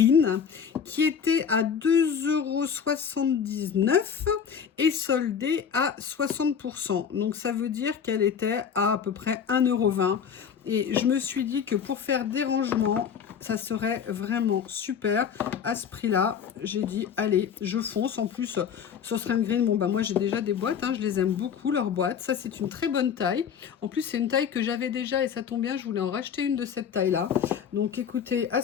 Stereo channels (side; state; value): right; quieter; 7.4 dB